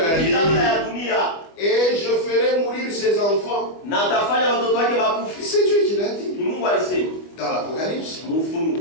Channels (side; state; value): right; late; 25 ms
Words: Et je ferai mourir ses enfants. C'est Dieu qui l'a dit. Dans l'Apocalypse.